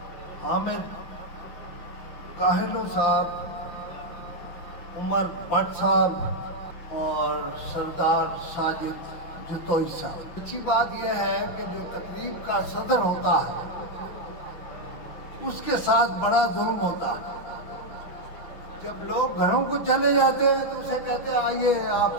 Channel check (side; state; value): right; late; 5.8 ms